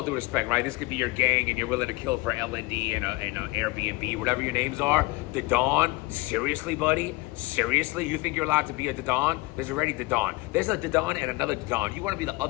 due respect, right? This could be your gang and you're willing to kill for LND and an Airbnb, whatever your names are. The Dawn, seriously, buddy? Seriously? You think you're allowed to be a Dawn? There's already Dawn. There's a Dawn and another Dawn. You want to be the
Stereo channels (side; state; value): right; quieter; 22.1 dB